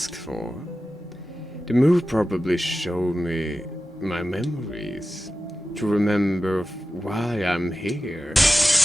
for. The move probably showed me my memories, to remember why I'm here.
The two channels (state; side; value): normal; both; correlation 0.93